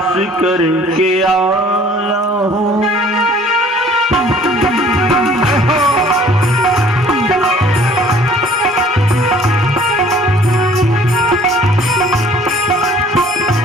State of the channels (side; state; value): both; normal; correlation 0.54